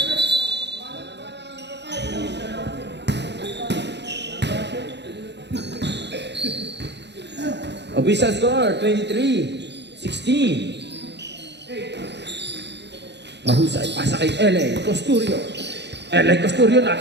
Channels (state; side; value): late; left; 0.50 ms